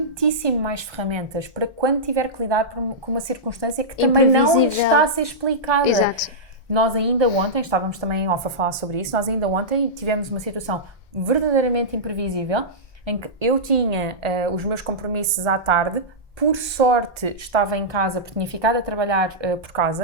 mais ferramentas para quando tiver que lidar com uma circunstância que também não está a ser explicada. Exato. Nós ainda ontem, estávamos também em off a falar sobre isso, nós ainda ontem tivemos uma situação verdadeiramente imprevisível em que eu tinha os meus compromissos à tarde. Por sorte estava em casa, porque tinha ficado a trabalhar por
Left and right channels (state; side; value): normal; both; correlation -0.13